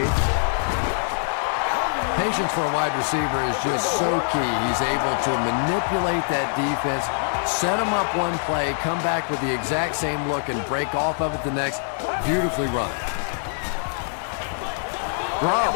Patience for a wide receiver is just so key. He's able to manipulate that defense, set them up one play, come back with the exact same look, and break off of it the next. Beautifully run.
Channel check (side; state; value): right; silent; digital silence